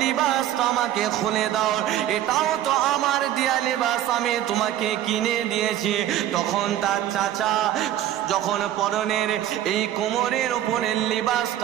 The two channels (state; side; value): quieter; left; 12.2 dB